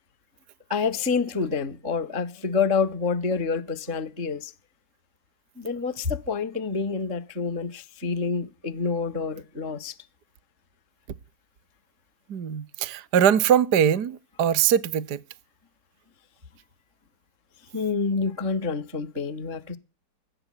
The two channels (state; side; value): late; left; 4.8 ms